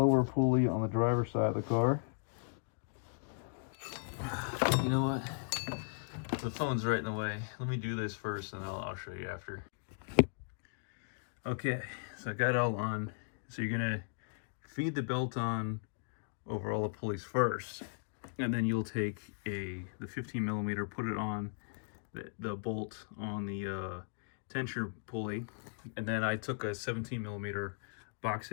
pulley on the driver's side of the car. You know what? The phone's right in the way. Let me do this first, and I'll show you after. Okay, so I got it all on. So you're gonna feed the belt on over all the pulleys first, and then you'll take the 15 millimeter, put it on the bolt on the tensioner pulley, and then I took a 17 millimeter box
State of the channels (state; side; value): silent; right; digital silence